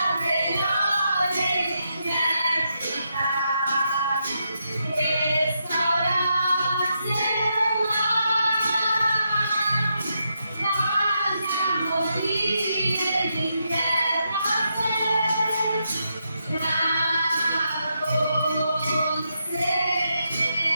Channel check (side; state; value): both; inverted; correlation -0.82